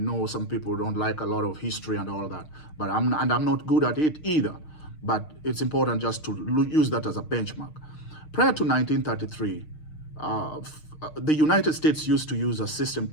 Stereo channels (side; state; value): right; late; 6.5 ms